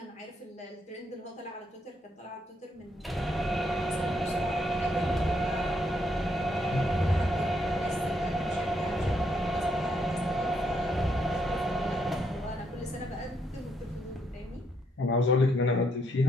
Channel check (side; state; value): both; normal; correlation 0.75